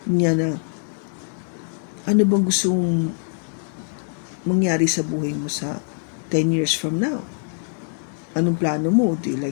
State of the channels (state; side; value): silent; right; digital silence